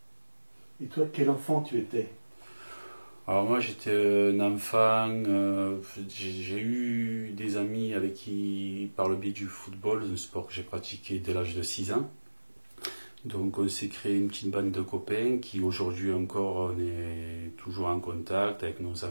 Et toi, quel enfant tu étais? Alors moi j'étais un enfant, j'ai eu des amis avec qui, par le biais du football, un sport que j'ai pratiqué dès l'âge de 6 ans. Donc on s'est créé une petite bande de copains qui aujourd'hui encore on est toujours en contact avec nos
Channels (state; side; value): inverted; both; correlation -1.00